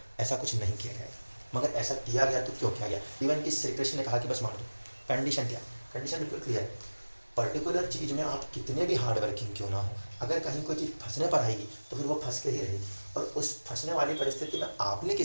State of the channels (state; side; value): inverted; both; correlation -1.00